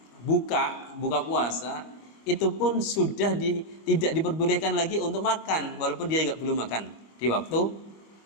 buka puasa, itu pun sudah tidak diperbolehkan lagi untuk makan, walaupun dia belum makan di waktu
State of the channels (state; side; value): late; right; 24 ms